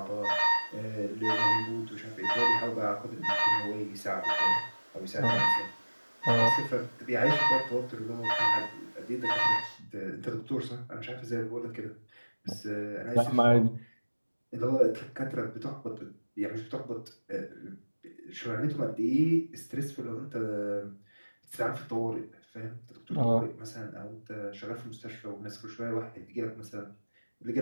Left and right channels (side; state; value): both; inverted; correlation -1.00